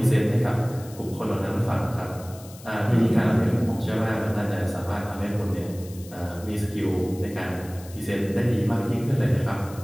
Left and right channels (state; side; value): noise; left; hiss, 20 dB below the sound